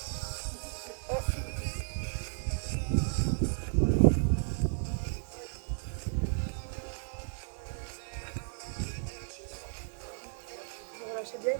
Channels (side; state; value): left; silent; 55 dB below the other